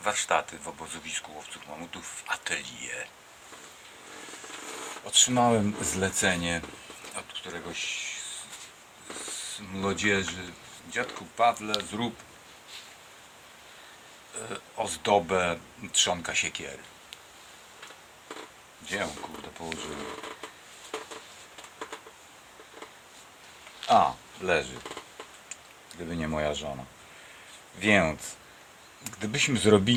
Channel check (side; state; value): both; identical; correlation 1.00